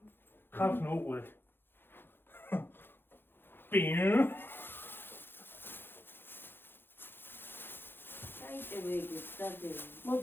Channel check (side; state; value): right; late; 0.10 ms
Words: ხაფნა უყურეთ. პინ. დაიტევეგი დადე